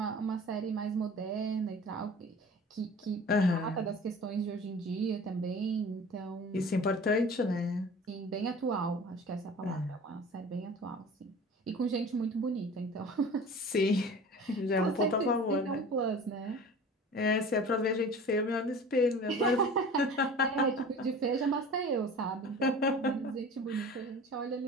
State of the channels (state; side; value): normal; both; correlation 0.40